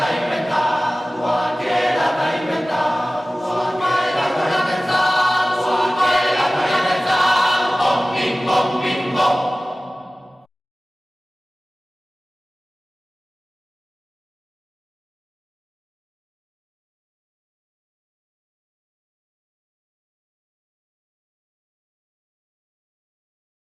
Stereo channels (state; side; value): normal; both; correlation 0.97